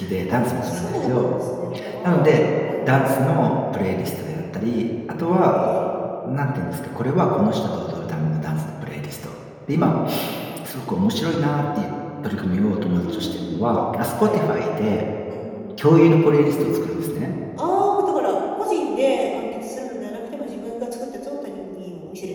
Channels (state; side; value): identical; both; correlation 1.00